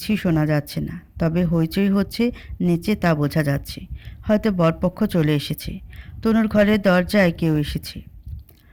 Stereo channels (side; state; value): both; identical; correlation 1.00